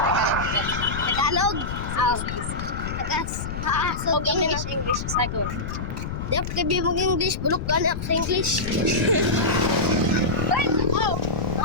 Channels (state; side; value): noise; left; rumble, 5 dB below the sound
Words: Tagalog. Huwag English, sagot. Di ako kabi mong English. Bulok ka na ako sa English. Wait, oh!